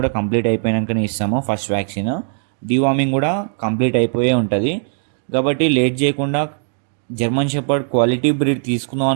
కంప్లీట్ అయిపోయాకనే ఇస్తాము. ఫస్ట్ వ్యాక్సిన్ డీవార్మింగ్ కూడా కంప్లీట్ అయిపోయే ఉంటుంది. కాబట్టి లేట్ చేయకుండా జర్మన్ షెపర్డ్ క్వాలిటీ బ్రీడ్ తీసుకుందాం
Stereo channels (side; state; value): left; silent; digital silence